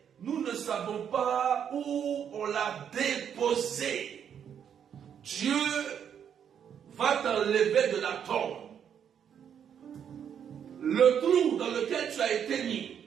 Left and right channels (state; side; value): quieter; left; 8.4 dB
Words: nous ne savons pas où on l'a déposé. Dieu va t'enlever de la tombe. Le trou dans lequel tu as été